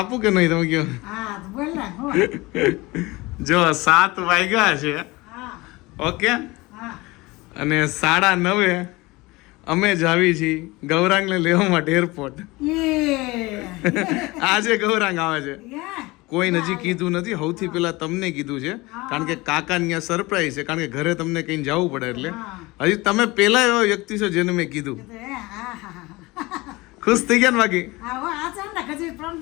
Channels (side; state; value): right; quieter; 22.2 dB